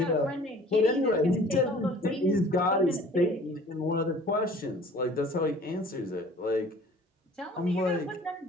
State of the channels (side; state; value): both; normal; correlation 0.50